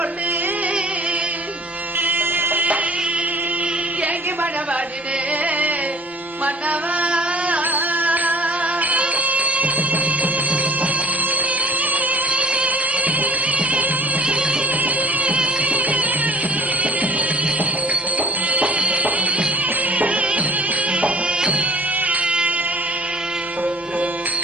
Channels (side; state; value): both; normal; correlation 0.48